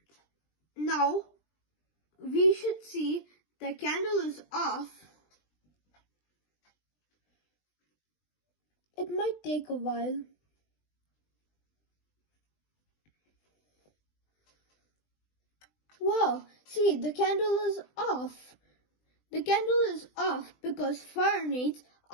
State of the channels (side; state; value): right; late; 20 ms